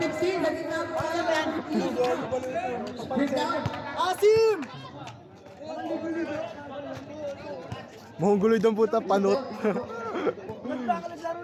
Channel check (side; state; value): both; identical; correlation 1.00